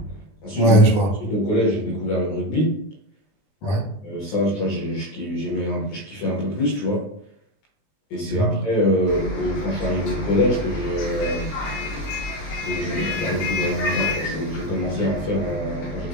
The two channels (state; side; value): late; right; 20 ms